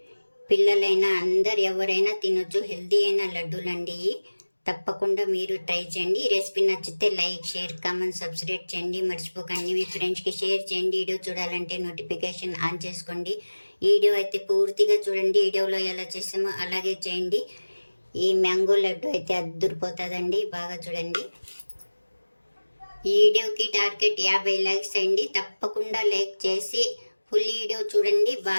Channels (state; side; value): inverted; both; correlation -1.00